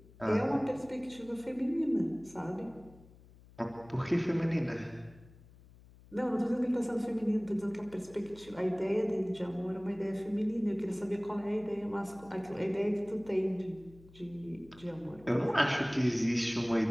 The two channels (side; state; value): left; noise; hum, 23 dB below the sound